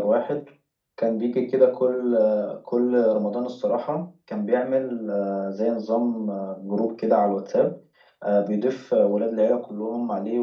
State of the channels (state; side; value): identical; both; correlation 1.00